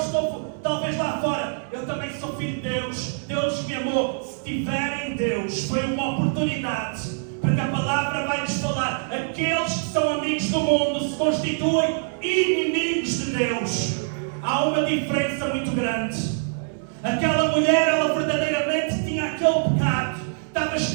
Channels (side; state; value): left; silent; digital silence